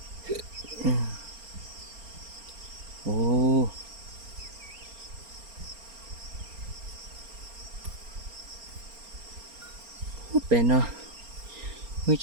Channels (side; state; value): left; late; 4.3 ms